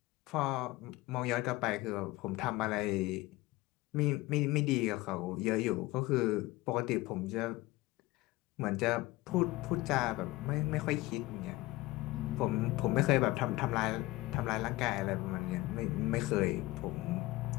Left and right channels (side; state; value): right; quieter; 19.3 dB